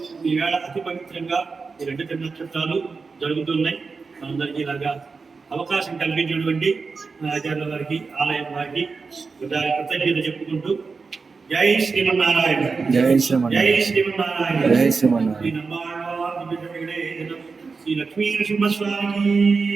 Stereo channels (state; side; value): quieter; left; 4.6 dB